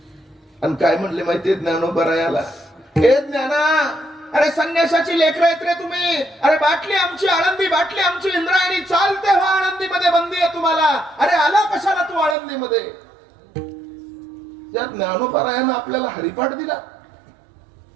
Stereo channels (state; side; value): drops out; left; at 12.4 s